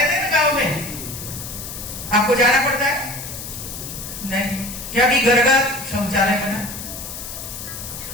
थे ना गांव में। आपको जाना पड़ता है नहीं क्या कि घर घर शौचालय बना।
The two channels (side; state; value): left; noise; hiss, 9 dB below the sound